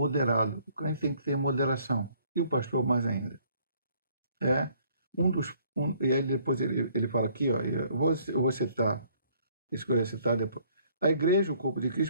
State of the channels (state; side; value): inverted; both; correlation -0.61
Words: O crente tem que ter moderação. E o pastor mais ainda. E aí depois ele fala aqui, ó, eu vou citar, escolher citar depois. A igreja, o corpo de